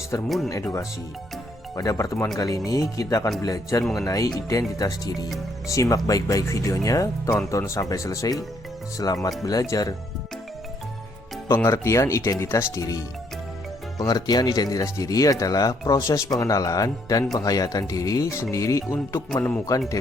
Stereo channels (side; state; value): both; normal; correlation 0.70